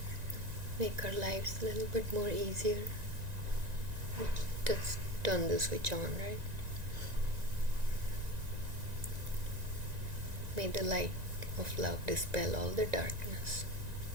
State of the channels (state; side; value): late; left; 1.9 ms